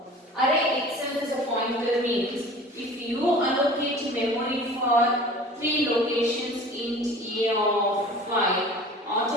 Array itself is a pointer means if you allocate memory for 3 locations int a of 5,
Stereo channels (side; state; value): both; normal; correlation 0.42